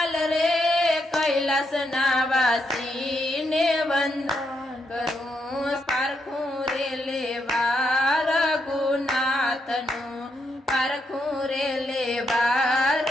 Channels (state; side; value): normal; both; correlation 0.80